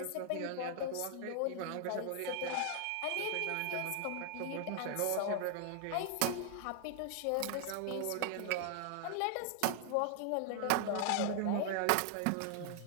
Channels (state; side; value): different; both; correlation 0.00